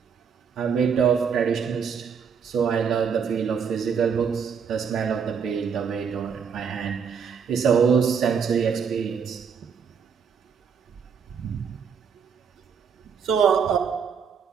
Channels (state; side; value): quieter; left; 6.7 dB